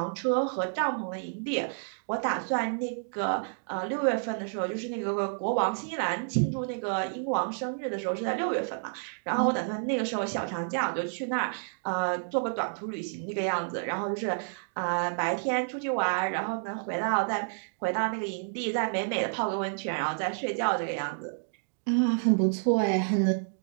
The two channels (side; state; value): left; silent; digital silence